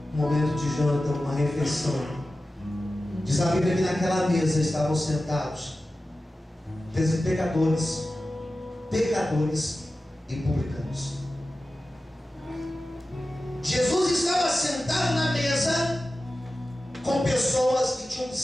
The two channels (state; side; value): normal; both; correlation 0.94